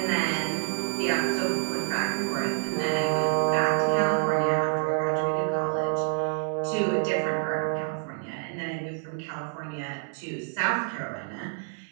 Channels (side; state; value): left; silent; digital silence